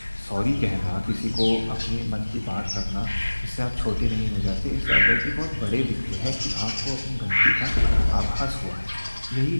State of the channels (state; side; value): inverted; both; correlation -1.00